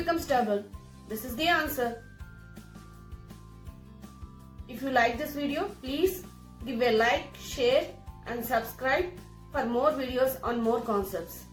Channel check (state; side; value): identical; both; correlation 1.00